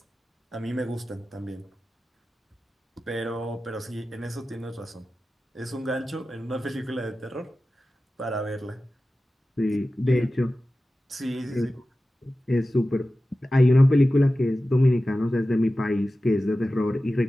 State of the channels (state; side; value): normal; both; correlation 0.95